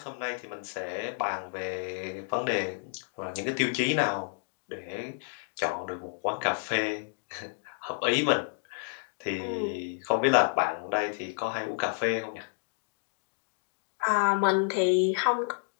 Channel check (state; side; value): silent; right; digital silence